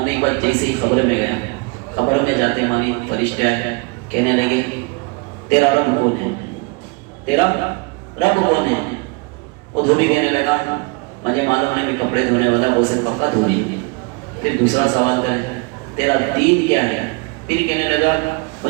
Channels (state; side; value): quieter; left; 28.9 dB